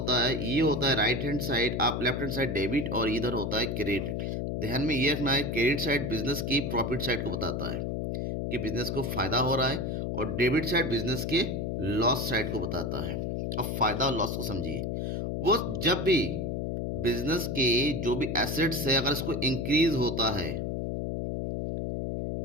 है। ये होता है राइट हैंड साइड, आप लेफ्ट हैंड साइड डेबिट, और इधर होता है क्रेडिट। ध्यान में ये रखना है, क्रेडिट साइड बिजनेस की प्रॉफिट साइड को बताता है कि बिजनेस को फायदा हो रहा है, और डेबिट साइड बिजनेस के लॉस साइड को बताता है। अब फायदा और लॉस को समझिए। वो जब भी बिजनेस के जो भी एसेट्स है, अगर इसको इंक्रीज होता है,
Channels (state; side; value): noise; left; hum, 2 dB below the sound